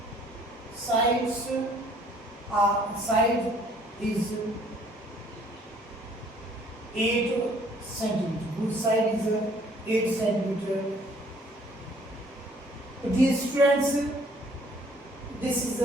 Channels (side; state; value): both; normal; correlation 0.59